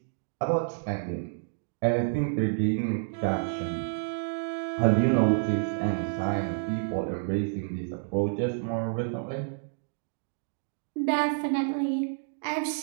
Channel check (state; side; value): silent; left; digital silence